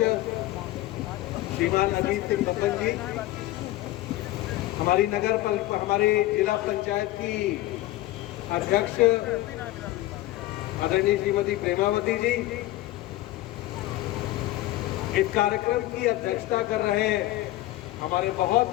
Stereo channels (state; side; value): quieter; right; 16.7 dB